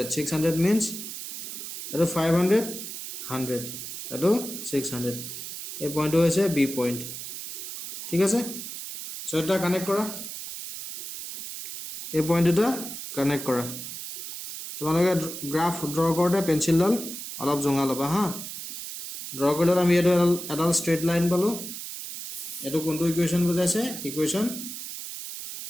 600 means eto 500 100 eto 600 এই পইণ্টটো হৈছে b point ঠিক আছে so এটা কানেক্ট কৰা এই পইণ্ট দুটা কানেক্ট কৰা তোমালোকে গ্ৰাফ ড্ৰ কৰোতে পেন্সিলডাল অলপ জঙা লবা হা ড্ৰ কৰিলে আমি এডাল স্ট্ৰেট লাইন পালো এটো কোনটো ইকুৱেচন বুজাইছে ইকুৱেচন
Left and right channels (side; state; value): right; noise; hiss, 8 dB below the sound